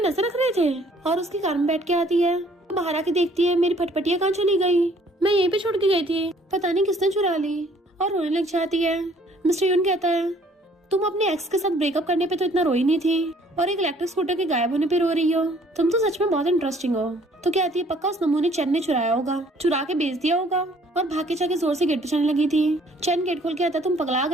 रख रहे थे। और उसकी कार में बैठ के आती है, बाहर आके देखती है मेरी फटफटिया कहाँ चली गई, मैं यहीं पे छोड़ के गई थी, पता नहीं किसने चुरा ली, और रोने लग जाती है। मिस्टर यून कहता है तुम अपने एक्स के साथ ब्रेकअप करने पे तो इतना रोई नहीं थी और एक इलेक्ट्रिक स्कूटर के गायब होने पे रो रही हो, तुम तो सच में बहुत इंटरेस्टिंग हो। तो कहती है पक्का उस नमूने चैन ने चुराया होगा, चुरा के बेच दिया होगा। और भाग के जाके जोर से गेट पे चढ़ने लगी थी। चैन गेट खोल के आता तुम पगला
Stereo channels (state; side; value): normal; both; correlation 0.59